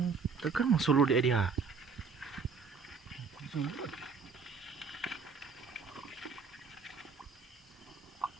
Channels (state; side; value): quieter; left; 5.2 dB